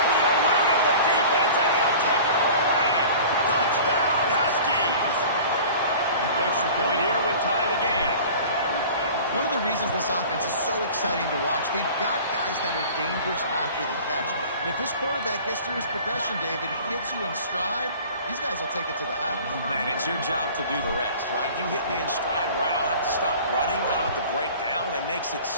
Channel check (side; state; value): both; inverted; correlation -0.43